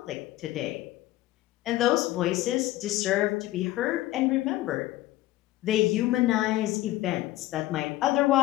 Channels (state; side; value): quieter; right; 16.2 dB